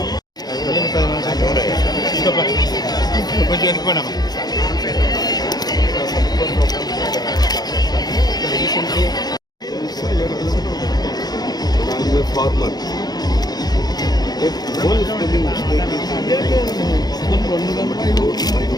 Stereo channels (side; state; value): right; late; 0.19 ms